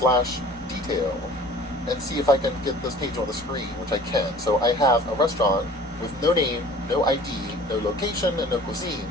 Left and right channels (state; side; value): normal; both; correlation 0.47